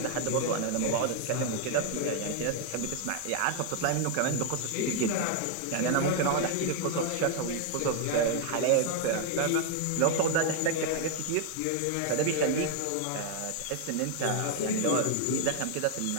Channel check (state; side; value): different; both; correlation 0.00